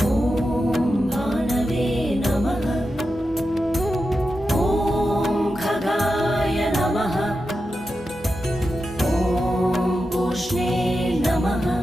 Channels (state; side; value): normal; both; correlation 0.90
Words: ॐ भानवे नमः। ॐ खगाय नमः। ॐ पूष्णे नमः।